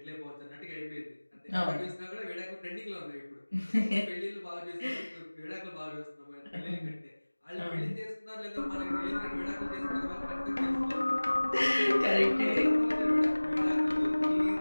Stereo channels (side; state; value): both; inverted; correlation -1.00